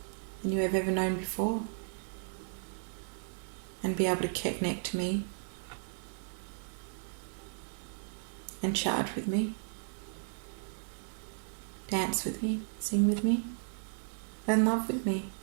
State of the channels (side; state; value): left; silent; digital silence